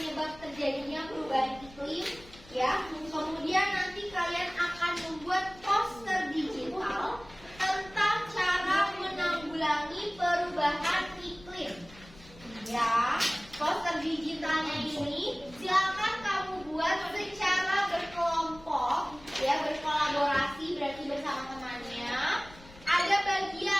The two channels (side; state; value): left; noise; rumble, 21 dB below the sound